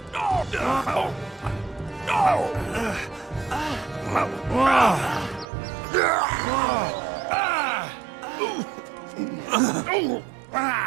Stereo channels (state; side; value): drops out; left; at 5.5 s